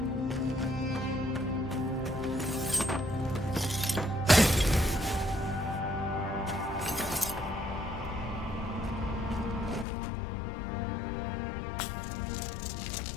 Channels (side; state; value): right; drops out; at 9.9 s